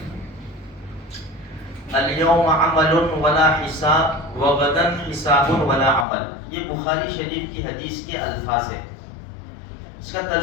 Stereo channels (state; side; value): drops out; right; at 6.1 s